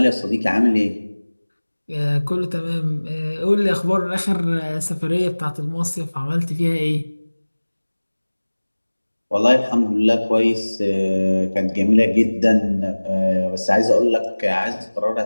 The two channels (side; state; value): both; inverted; correlation -1.00